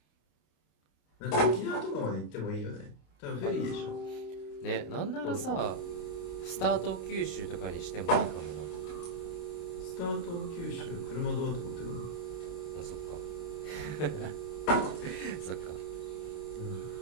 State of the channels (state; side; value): late; right; 30 ms